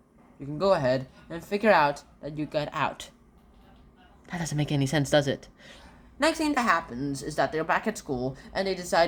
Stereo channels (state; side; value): identical; both; correlation 1.00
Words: you can go ahead and figure out that you got out. That doesn't make any sense, does it? Next thing that happens is that they're back at school, and they